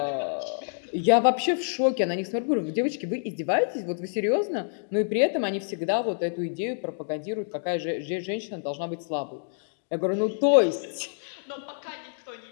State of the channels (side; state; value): right; silent; digital silence